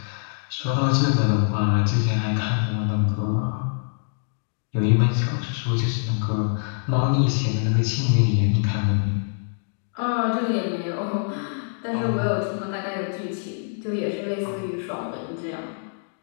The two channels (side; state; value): right; silent; 62 dB below the other